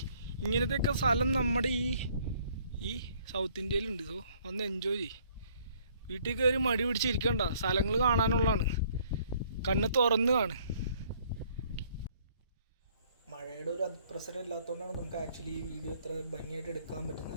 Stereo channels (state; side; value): inverted; both; correlation -0.62